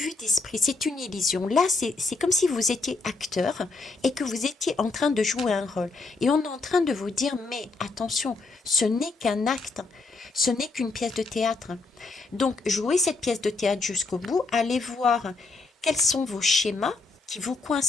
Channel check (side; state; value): right; quieter; 3.7 dB